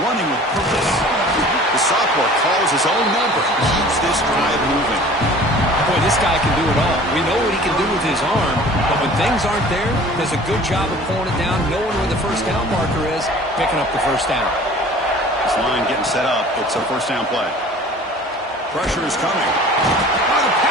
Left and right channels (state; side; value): normal; both; correlation 0.46